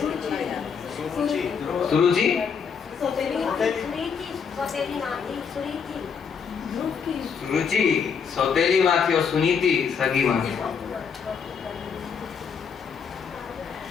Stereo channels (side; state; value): right; quieter; 6.4 dB